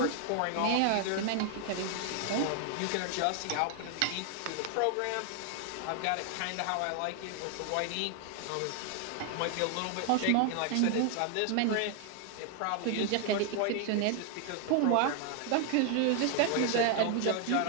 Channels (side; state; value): both; different; correlation 0.00